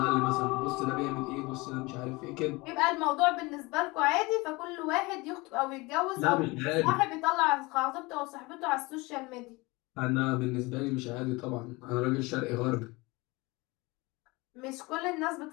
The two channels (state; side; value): quieter; right; 23.9 dB